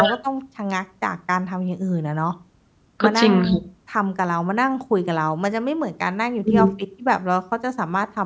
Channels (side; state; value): both; identical; correlation 1.00